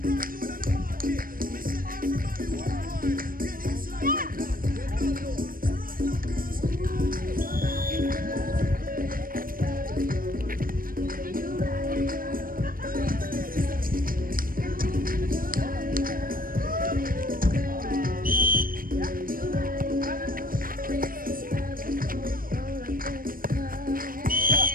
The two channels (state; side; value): late; left; 0.41 ms